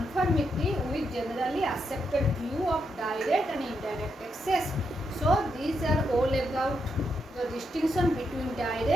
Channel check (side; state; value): both; normal; correlation 0.81